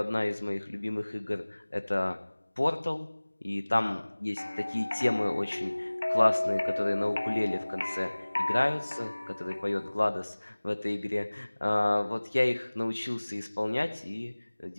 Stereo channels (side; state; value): both; inverted; correlation -1.00